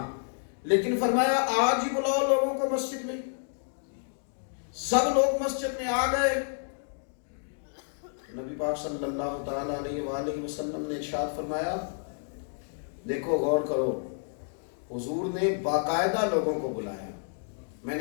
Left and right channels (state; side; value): silent; right; digital silence